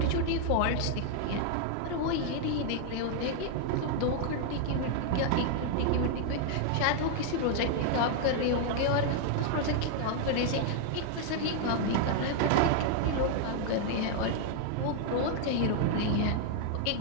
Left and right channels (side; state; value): both; different; correlation 0.00